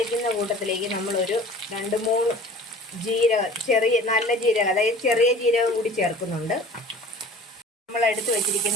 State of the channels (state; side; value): normal; both; correlation 0.44